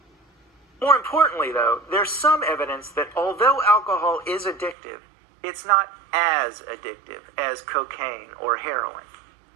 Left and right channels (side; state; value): left; drops out; at 4.8 s